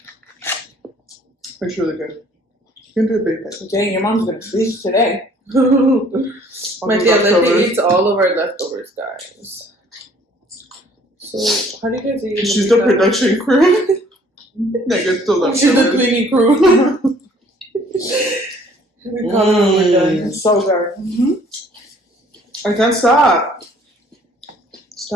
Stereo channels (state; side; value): normal; both; correlation 0.58